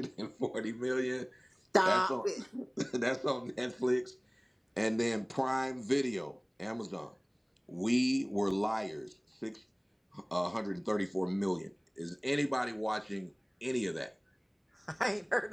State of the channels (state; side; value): identical; both; correlation 1.00